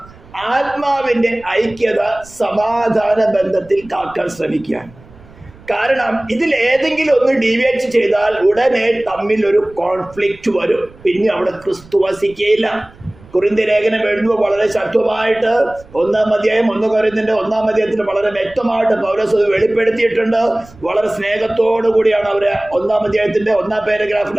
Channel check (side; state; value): right; noise; rumble, 23 dB below the sound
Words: ആത്മാവിന്റെ ഐക്യത സമാധാന ബന്ധത്തിൽ കാക്കാൻ ശ്രമിക്കാൻ. കാരണം ഇതിൽ ഏതെങ്കിലും ഒന്ന് ഡീവിയേറ്റ് ചെയ്താൽ ഉടനെ തമ്മിൽ ഒരു കോൺഫ്ലിക്റ്റ് വരും. പിന്നെ അവിടെ ക്രിസ്തു വസിക്കുകയില്ല. കൊരിന്ത്യ ലേഖനം എഴുതുമ്പോൾ വളരെ ശക്തമായിട്ട് 1-ാം അധ്യായം 1 കൊരിന്ത്യന്റെ 1-ാം അധ്യായത്തിൽ വളരെ വ്യക്തമായിട്ട് പൗലോസ് അത് വെളിപ്പെടുത്തിയിട്ടുണ്ട്. വളരെ സ്നേഹത്തോടു കൂടിയാണ് അവര് 1-ാം അധ്യായത്തിന്റെ 1-ാം പാരഗ്രാഫിൽ